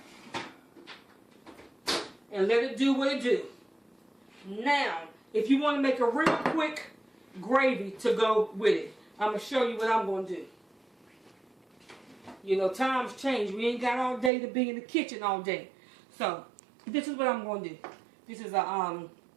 And let it do what it do. Now, if you want to make a real quick gravy to go with it, I'm going to show you what I'm going to do. You know, times change. We ain't got all day to be in the kitchen all day. So, this is what I'm going to do. This is a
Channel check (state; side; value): drops out; left; at 14.3 s